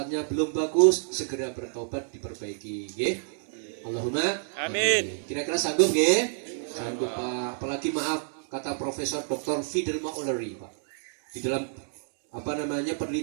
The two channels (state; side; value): silent; left; 59 dB below the other